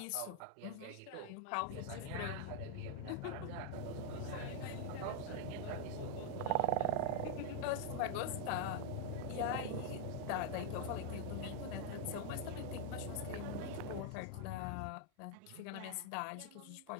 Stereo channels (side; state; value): both; different; correlation 0.00